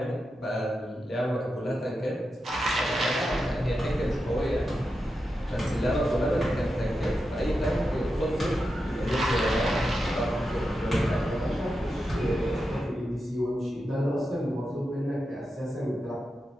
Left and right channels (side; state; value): both; normal; correlation 0.89